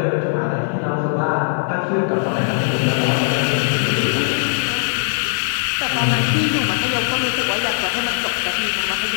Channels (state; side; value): silent; right; digital silence